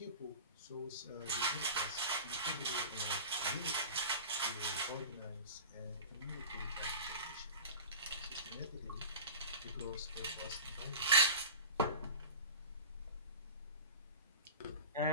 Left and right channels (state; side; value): inverted; both; correlation -0.35